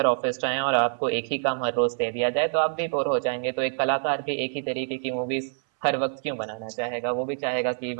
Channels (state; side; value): silent; left; 61 dB below the other